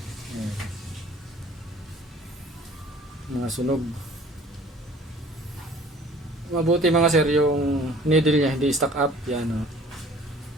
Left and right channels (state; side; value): normal; both; correlation 0.51